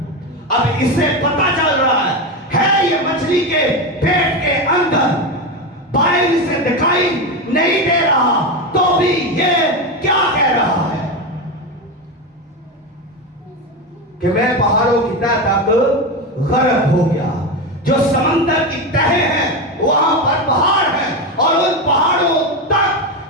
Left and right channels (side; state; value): both; normal; correlation 0.16